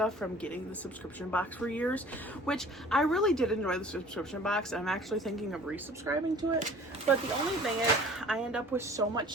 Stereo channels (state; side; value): normal; both; correlation 0.48